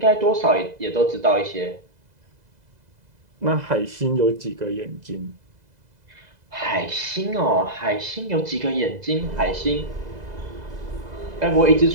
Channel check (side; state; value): left; late; 2.0 ms